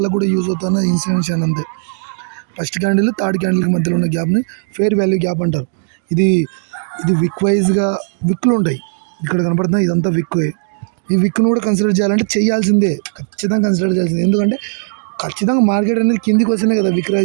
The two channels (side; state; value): left; silent; digital silence